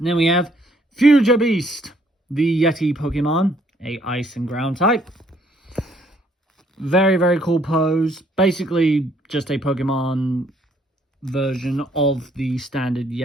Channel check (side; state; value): both; normal; correlation 0.66